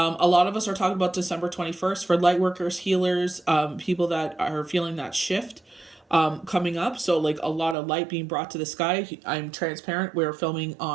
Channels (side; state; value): left; drops out; at 7.8 s